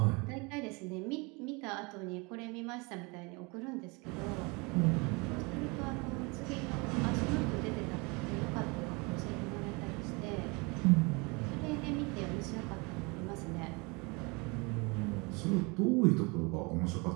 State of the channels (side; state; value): left; quieter; 28.3 dB